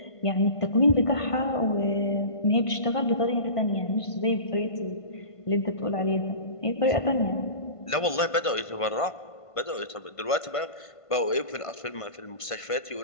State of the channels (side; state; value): right; late; 1.5 ms